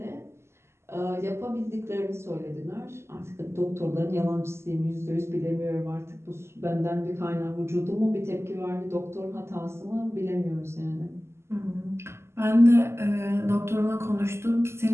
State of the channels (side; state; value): left; late; 0.13 ms